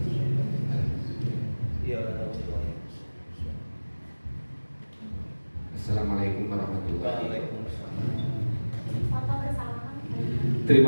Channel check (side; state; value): both; inverted; correlation -1.00